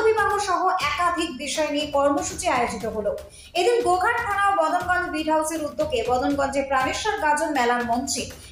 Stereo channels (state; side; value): identical; both; correlation 1.00